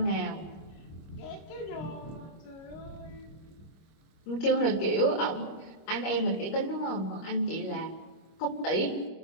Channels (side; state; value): right; late; 26 ms